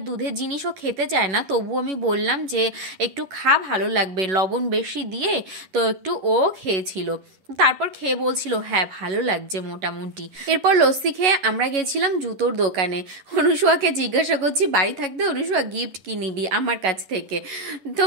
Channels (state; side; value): late; left; 11 ms